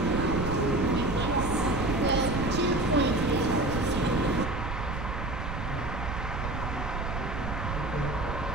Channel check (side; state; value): right; noise; rumble, 5 dB below the sound